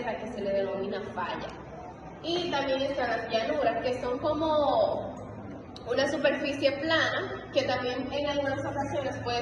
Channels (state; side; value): identical; both; correlation 1.00